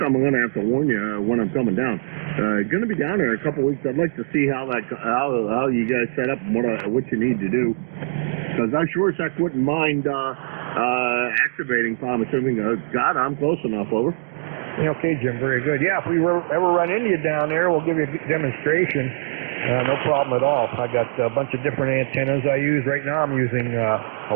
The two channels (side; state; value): left; silent; digital silence